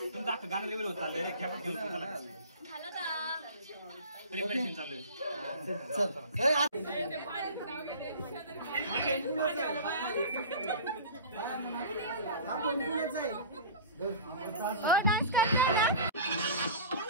अख्खं गाणं लेवल होत चाललंय रे खेपात घेऊन झालं का प्रिपरेशन चालू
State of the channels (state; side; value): inverted; both; correlation -0.38